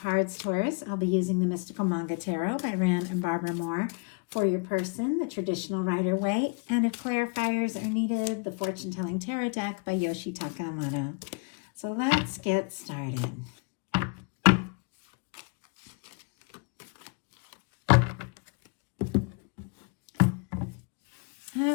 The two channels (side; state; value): right; quieter; 33.7 dB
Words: Taurus, I'll be using the Mystical Manga Tarot by Ran and Barbara Moore. For your person, the Traditional Rider-Waite. And if clarifiers are needed, the Fortune Telling Tarot deck by Yoshi Takamoto. So let's get started.